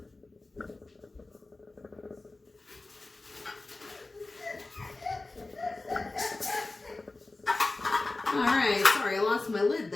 All right, sorry, I lost my lid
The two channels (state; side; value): quieter; right; 3.2 dB